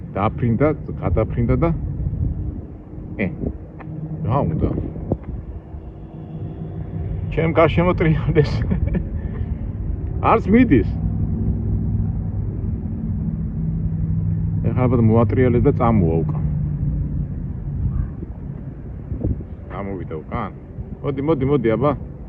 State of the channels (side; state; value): both; identical; correlation 1.00